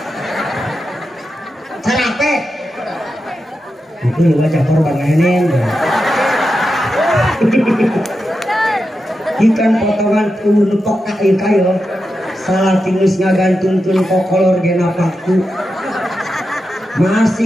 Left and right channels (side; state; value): both; normal; correlation 0.89